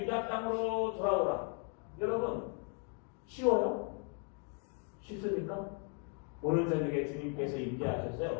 유다 땅으로 돌아오라. 여러분, 쉬워요? 쉽습니까? 오늘 저녁에 주님께서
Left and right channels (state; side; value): quieter; right; 37.0 dB